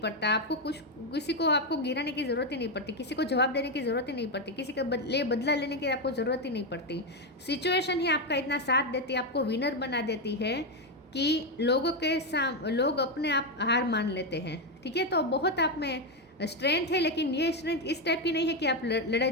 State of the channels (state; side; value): normal; both; correlation 0.07